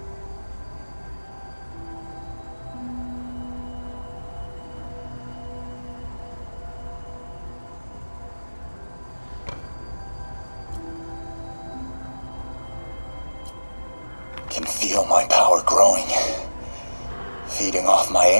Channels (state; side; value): inverted; both; correlation -1.00